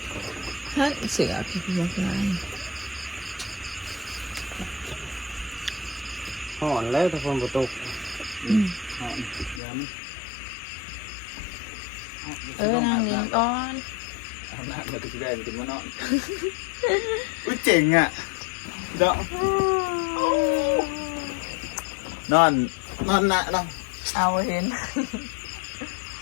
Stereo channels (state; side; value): drops out; right; at 9.6 s